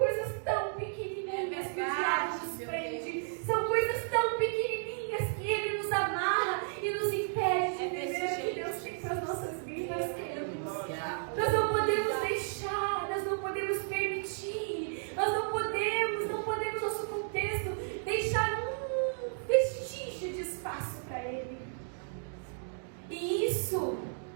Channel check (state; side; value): silent; left; digital silence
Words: tão pequenininhas que o diabo nos prende. São coisas tão pequenininhas que ele nos amarra e nos impede de viver o que Deus tem para as nossas vidas, queridos. Nós não podemos deixar, nós não podemos permitir, nós não podemos nosso contexto, deixar um vestígio de espaço para ele. E isso